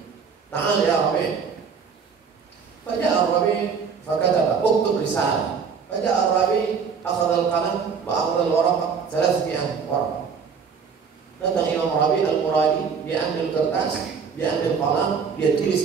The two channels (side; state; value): left; quieter; 6.1 dB